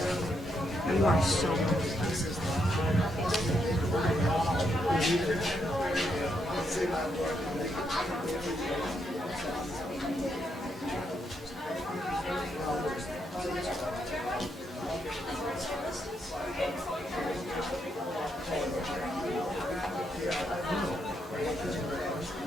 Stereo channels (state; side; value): normal; both; correlation 0.79